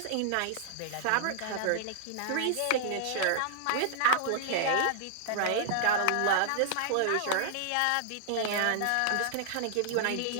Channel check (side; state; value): both; different; correlation -0.01